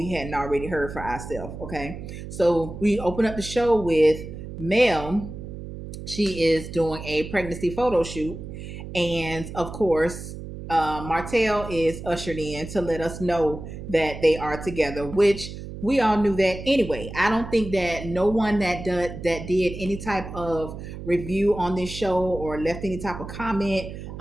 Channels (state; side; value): noise; right; hum, 10 dB below the sound